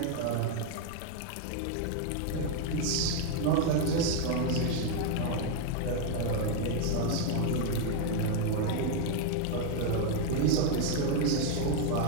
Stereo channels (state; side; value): different; both; correlation 0.00